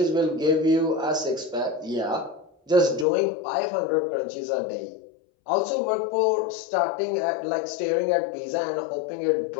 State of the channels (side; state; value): right; drops out; at 3.1 s